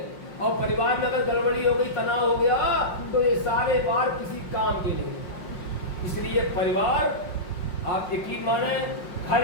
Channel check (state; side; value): late; right; 5.6 ms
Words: और परिवार में अगर गड़बड़ी हो गई, तनाव हो गया, तो ये सारे बार किसी काम के नहीं। इसलिए परिवार, आप यकीन माने, हर